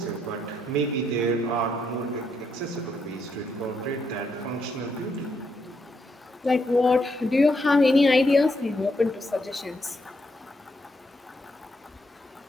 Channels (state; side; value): normal; both; correlation 0.78